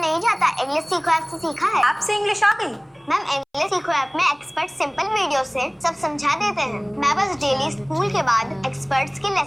जाता, इंग्लिश सीखो ऐप से सीखा है। ऐप से इंग्लिश आ गई? मैम इंग्लिश सीखो ऐप में एक्सपर्ट सिंपल वीडियो से सब समझा देते हैं। मैं बस डेली स्कूल के बाद एक्सपर्ट्स के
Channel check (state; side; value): identical; both; correlation 1.00